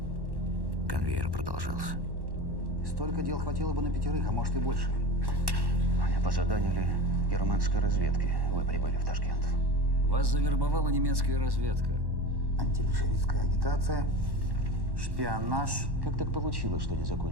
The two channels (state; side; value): late; left; 1.1 ms